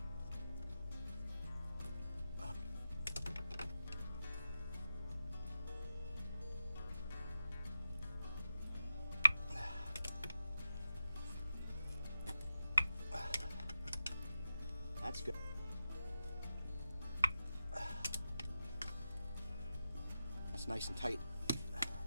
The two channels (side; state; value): both; inverted; correlation -0.91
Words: It's nice and tight.